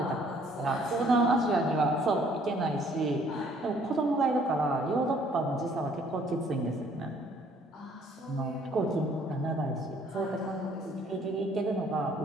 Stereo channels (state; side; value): normal; both; correlation 0.61